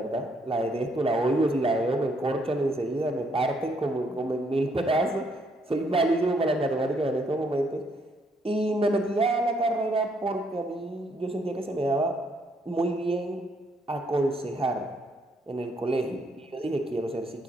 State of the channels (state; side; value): normal; both; correlation 0.71